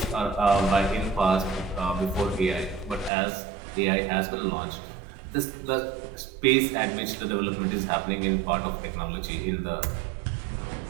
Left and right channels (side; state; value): left; drops out; at 3.1 s